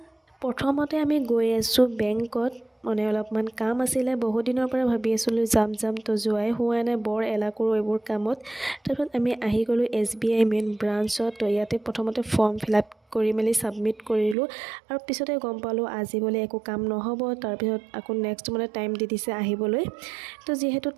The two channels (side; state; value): left; drops out; at 14.4 s